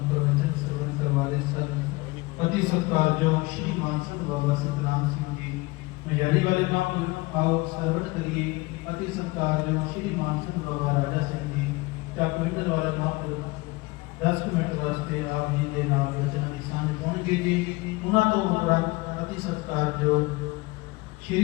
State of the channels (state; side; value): quieter; right; 23.2 dB